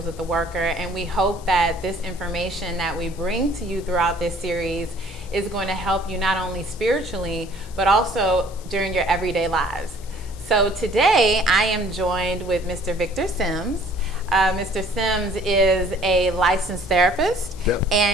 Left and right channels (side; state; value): left; noise; hiss, 22 dB below the sound